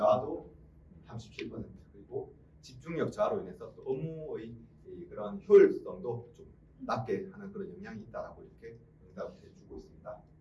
37%, 그리고 집중력 저하로 인해서 또 업무의 그런 효율성도 좀 낮게 하는 그런 영향이 있다라고 이렇게 응답을 해주고 있습니다.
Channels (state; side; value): identical; both; correlation 1.00